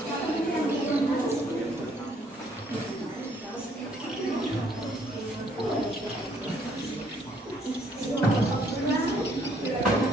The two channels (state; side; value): normal; both; correlation 0.66